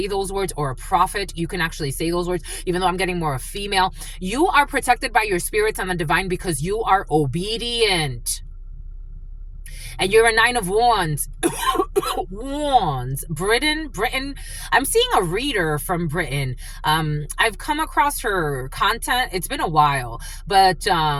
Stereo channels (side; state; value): both; identical; correlation 1.00